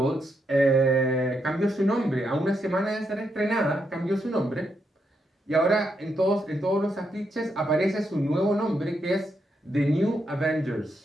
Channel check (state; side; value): normal; both; correlation 0.80